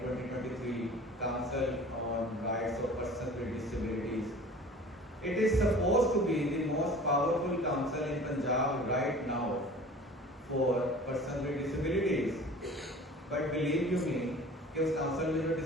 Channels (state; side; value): normal; both; correlation 0.43